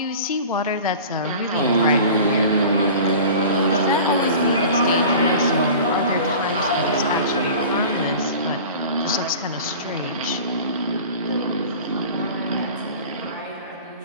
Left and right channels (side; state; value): both; inverted; correlation -0.39